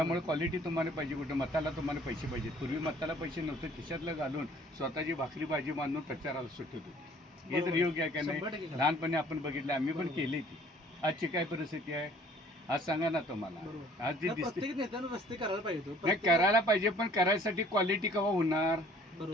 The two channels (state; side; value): normal; both; correlation 0.56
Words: क्वालिटी तुम्हाला पाहिजे, कुठं मताला तुम्हाला पैसे पाहिजेत. पूर्वी मताला पैसे नव्हते, खिशातलं घालून स्वतःची भाकरी भाजी बांधून प्रचाराला सुटत होती. हे तर योग्य आहे का नाही? लहानपणी आपण बघितलं, आम्ही पण केली ती. आजची काय परिस्थिती आहे आज सांगा ना तुम्हाला. आज जी दिसते रस्ते करायला पाहिजे, नाही करायला पाहिजे, पण करायसाठी क्वालिटी केव्हा होणार?